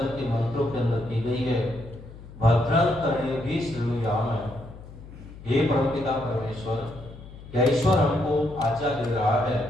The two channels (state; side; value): noise; left; hum, 16 dB below the sound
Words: के मंत्रों के अंदर की गई है। भद्रं कर्णेभिः शृणुयाम। हे परमपिता परमेश्वर, क्या ईश्वर हमको आज्ञा दे रहा है,